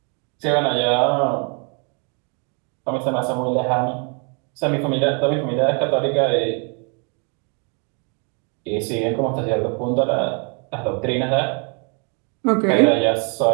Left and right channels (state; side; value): quieter; left; 37.1 dB